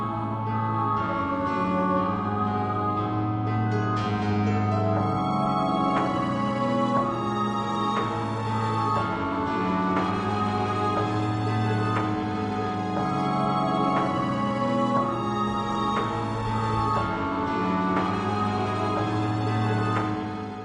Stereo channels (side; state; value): both; identical; correlation 1.00